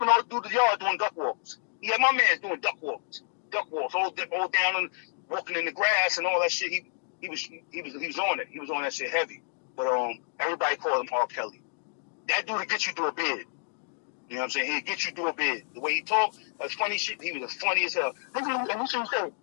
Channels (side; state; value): right; silent; 58 dB below the other